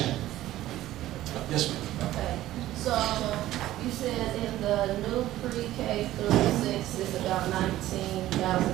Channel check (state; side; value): quieter; left; 14.7 dB